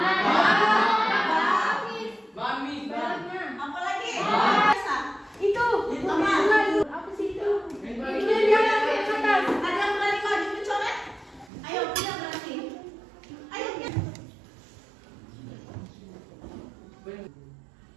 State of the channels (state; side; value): drops out; left; at 11.5 s